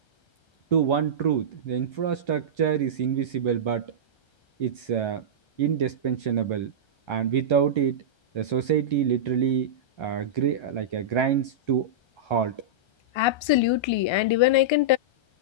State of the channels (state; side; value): late; right; 1.3 ms